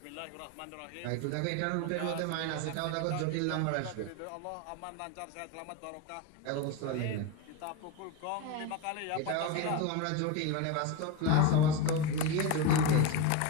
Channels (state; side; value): different; both; correlation 0.05